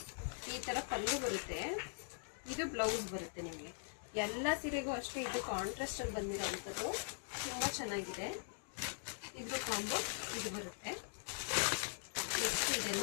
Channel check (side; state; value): right; silent; digital silence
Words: ಈ ಥರ ಪಲ್ಲು ಬರುತ್ತೆ, ಇದು ಬ್ಲೌಸ್ ಬರುತ್ತೆ. ನಿಮಗೆ ಎಲ್ಲ ಸೀರೆಗೂ ಅಷ್ಟೇ ಇದು ಕಾಂಟ್ರಾಸ್ಟ್ ಅಲ್ಲಿ ಬಂದಿರೋವಂಥದ್ದು. ತುಂಬ ಚೆನ್ನಾಗಿದೆ. ಇದು ಕಾಂಬೋ ಇದು ಬರುತ್ತೆ. ನೆಕ್ಸ್ಟ್